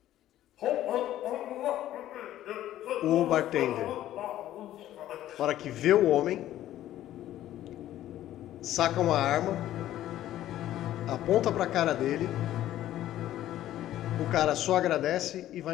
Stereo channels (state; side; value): quieter; right; 13.1 dB